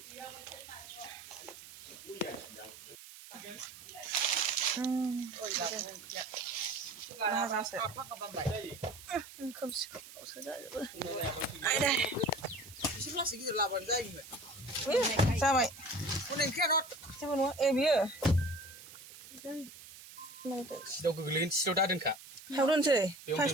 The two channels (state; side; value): noise; right; hiss, 16 dB below the sound